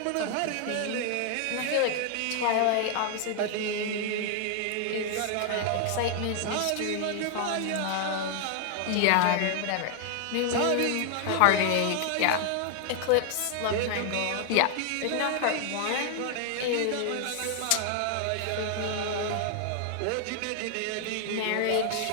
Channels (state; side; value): different; both; correlation 0.00